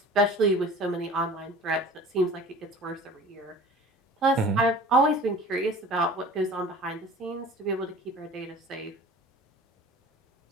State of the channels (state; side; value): normal; both; correlation 0.43